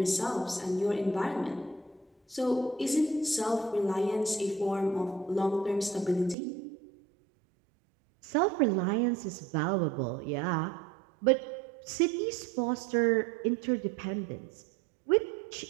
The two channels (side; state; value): left; drops out; at 6.4 s